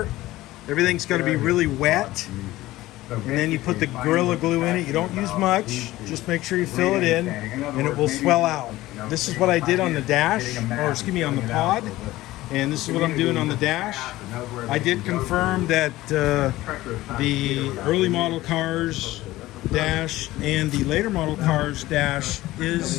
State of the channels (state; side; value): quieter; right; 17.0 dB